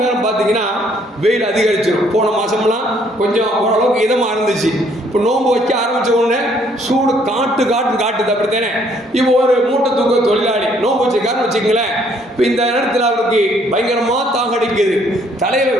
நேரம் பார்த்தீங்கன்னா வெயில் அதிகரிச்சிடும். போன மாதம்லாம் கொஞ்சம் ஓரளவுக்கு இதமாக இருந்துச்சு. இப்போ நோன்பு வைக்க ஆரம்பித்த உடனே சூடு காட்டுது, அப்படித்தானே? இப்போ ஒரு மூட்டை தூக்க தொழிலாளி நோன்பு வச்சுக்காருன்னு வச்சுக்கங்களேன், இப்போ இந்த நேரத்தில் அவருக்கு பயங்கரமாக தாகடிக்குது, தலையில்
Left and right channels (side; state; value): both; normal; correlation 0.65